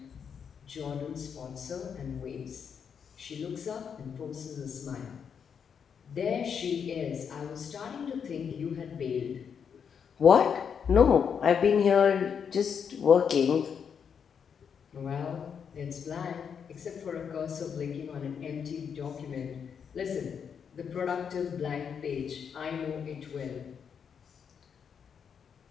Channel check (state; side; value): quieter; right; 7.1 dB